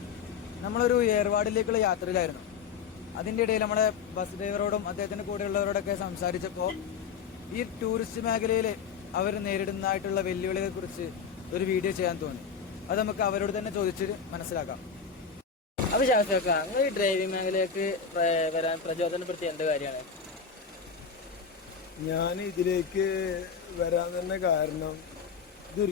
നമ്മളൊരു ഏർവാടിലേക്കുള്ള യാത്രയിലായിരുന്നു. അതിൻ്റെ ഇടയിൽ നമ്മുടെ ബസ് ഡ്രൈവറോടും അദ്ദേഹത്തിൻ്റെ കൂടെയുള്ളവരോടൊക്കെ സംസാരിച്ചപ്പോൾ ഈ ടൂറിസ്റ്റ് മേഖലയിൽ അവർ നേരിടുന്നതായിട്ടുള്ള വെല്ലുവിളികളെക്കുറിച്ച് ഒരു വീഡിയോ ചെയ്യാൻ തോന്നി. അത് നമുക്ക് അവരോട് തന്നെ ചോദിച്ചിട്ട് മനസ്സിലാക്കാം. അപ്പോൾ ശാസ്ത്രക്കാർ, നിങ്ങൾ ഈ ഡ്രൈവിംഗ് മേഖലയിലേക്ക് വരാൻ പ്രചോദനപ്പെടുത്തിയ എന്ത് കാര്യമാണ്? ഞാൻ ഇതിലേക്ക് വരാൻ തന്നെ കാരണം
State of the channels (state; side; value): quieter; right; 6.1 dB